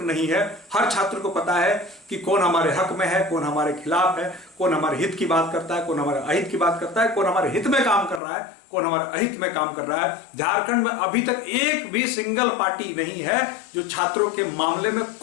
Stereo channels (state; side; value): drops out; right; at 8.2 s